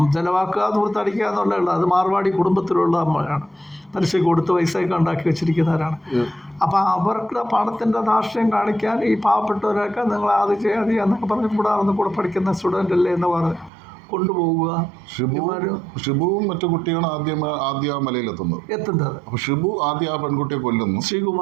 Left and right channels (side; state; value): left; drops out; at 13.7 s